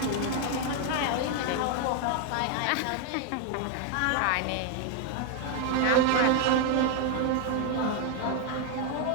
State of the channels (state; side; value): different; both; correlation 0.01